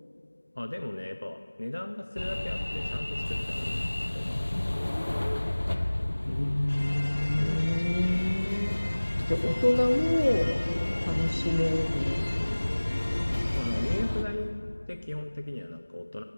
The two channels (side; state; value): both; inverted; correlation -1.00